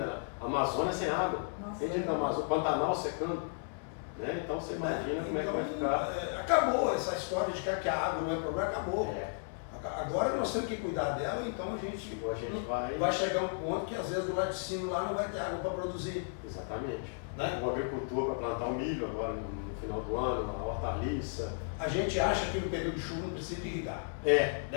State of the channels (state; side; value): silent; right; 55 dB below the other